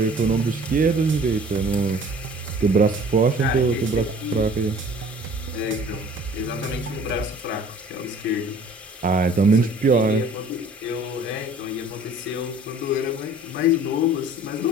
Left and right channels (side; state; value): both; normal; correlation 0.50